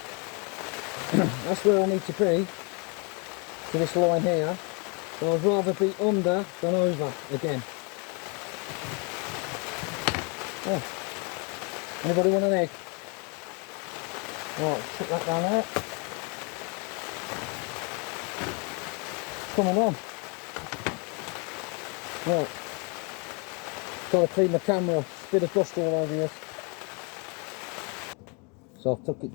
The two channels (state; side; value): quieter; right; 33.8 dB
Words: That's where I need to be, to this line here. So I'd rather be under than over again. Oh. Anybody want an egg? Right, put that down there. Coming on. Right. Trying to clean the camera. It's a bit of dust all over this. So I've took